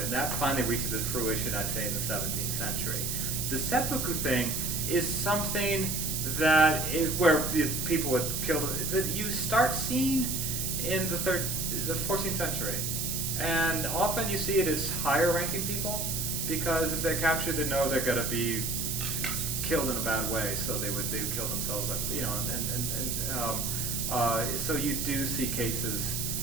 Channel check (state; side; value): noise; right; hiss, 1 dB below the sound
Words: And that finally reaches its fruition, I'd say, in the 17th century. The seppuku thing is something that is where the people would kill them, that you start seeing in the 14th century. And often you see it as higher ranking people, because if they're captured, they know they're going to be killed in a bad way, so they would kill themselves, so you do see cases